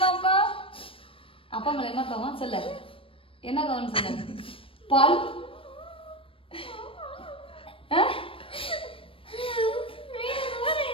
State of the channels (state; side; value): late; right; 0.26 ms